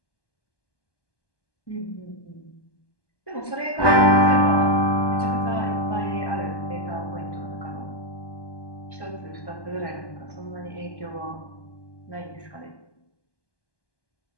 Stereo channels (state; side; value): late; right; 1.2 ms